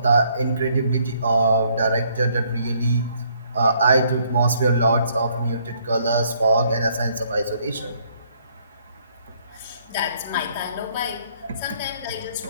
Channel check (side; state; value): both; inverted; correlation -0.67